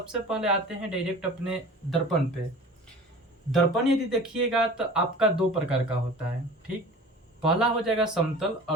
पहले आते हैं डायरेक्ट अपने दर्पण पे। दर्पण यदि देखिएगा तो आपका दो प्रकार का होता है, ठीक। पहला हो जाएगा समतल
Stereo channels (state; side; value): normal; both; correlation 0.40